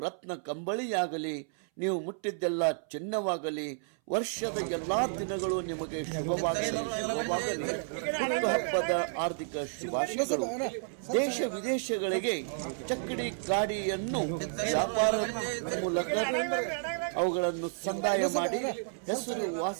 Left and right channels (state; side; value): silent; left; 57 dB below the other